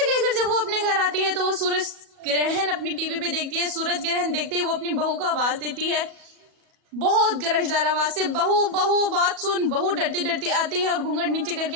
कहकर जब वो अपने घर आती है तो वो सूरज ग्रहण अपनी टीवी पे देखती है। सूरज ग्रहण देखते ही वो अपनी बहू को आवाज देती है, बहुत गरजदार आवाज से, बहू बहू बात सुन। बहू डरती डरती आती है और घूंघट नीचे करके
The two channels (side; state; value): left; late; 37 ms